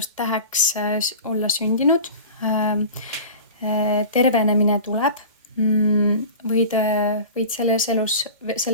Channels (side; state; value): both; inverted; correlation -0.36